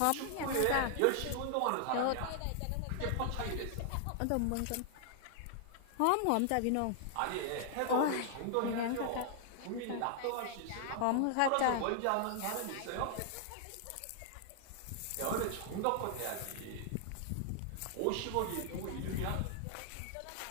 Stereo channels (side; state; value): both; different; correlation 0.00